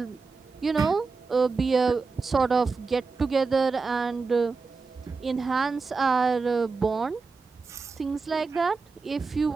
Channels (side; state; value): left; quieter; 4.4 dB